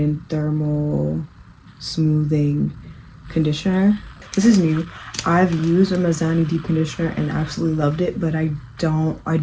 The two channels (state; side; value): identical; both; correlation 1.00